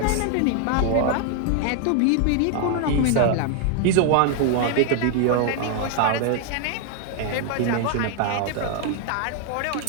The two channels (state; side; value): different; both; correlation 0.00